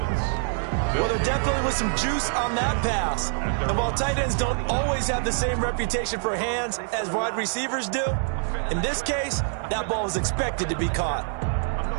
Well, there definitely was some juice on that pass. And while tight ends don't always have the same reputation for hands as wide receivers do, in this case, that ball was expected to be caught.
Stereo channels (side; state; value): left; silent; 61 dB below the other